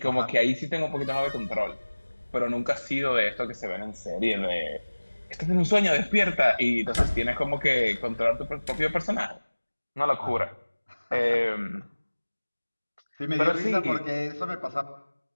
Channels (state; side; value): inverted; both; correlation -1.00